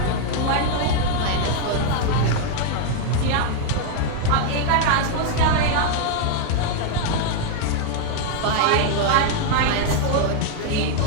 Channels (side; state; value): both; different; correlation 0.00